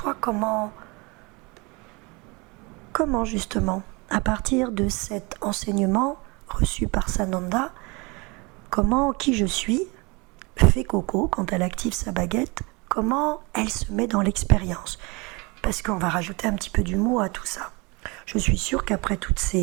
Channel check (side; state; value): left; quieter; 27.3 dB